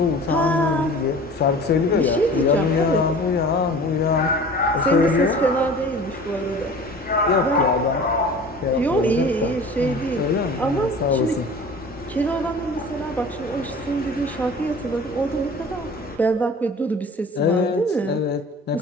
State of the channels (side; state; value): both; normal; correlation 0.42